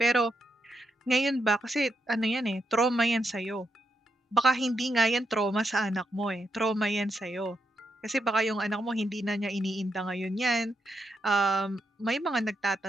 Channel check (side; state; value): both; normal; correlation 0.82